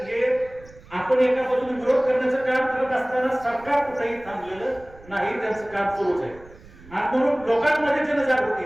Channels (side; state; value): right; noise; rumble, 22 dB below the sound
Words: हे आपण एका बाजूने विरोध करण्याचं काम करत असताना सरकार कुठेही थांबलेलं नाही, त्यांचं काम सुरूच आहे. आणि म्हणून लोकांमध्ये